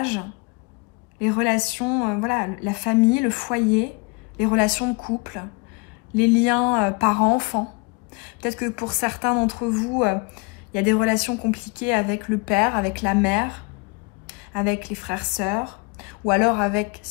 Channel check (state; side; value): quieter; right; 30.6 dB